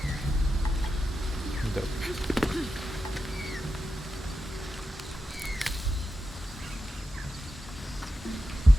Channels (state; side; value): normal; both; correlation 0.90